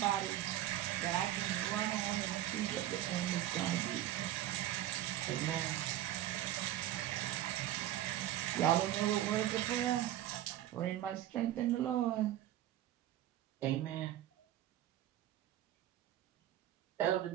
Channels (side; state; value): left; quieter; 13.2 dB